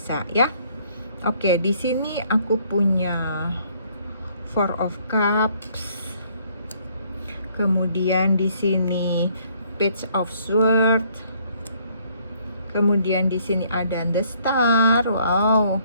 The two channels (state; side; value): inverted; both; correlation -0.65